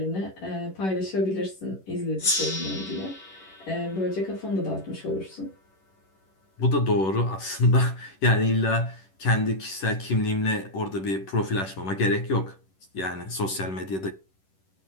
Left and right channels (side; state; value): right; late; 11 ms